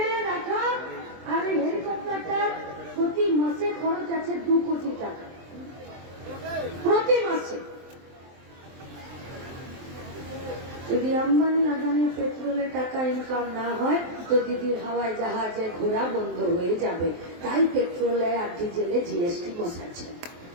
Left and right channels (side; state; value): left; late; 23 ms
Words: রাখা আর এই হেলিকপ্টারটার প্রতি মাসে খরচ আছে 2 কোটি টাকা প্রতি মাসে। যদি আম্বানি আদানির পেট্রোলে টাকা ইনকাম না হয় তো দিদির হাওয়ায় জাহাজে ঘোরা বন্ধ হয়ে যাবে। তাই পেট্রোলে আর ডিজেলে जीएसटी বসাচ্ছে।